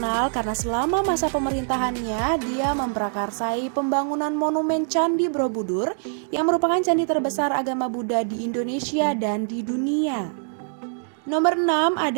karena selama masa pemerintahannya dia memprakarsai pembangunan monumen Candi Borobudur yang merupakan candi terbesar agama Buddha di Indonesia dan di dunia. Nomor 6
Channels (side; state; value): left; silent; 63 dB below the other